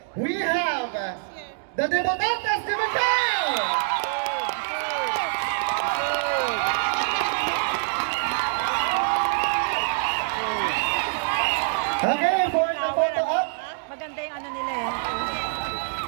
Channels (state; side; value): silent; left; digital silence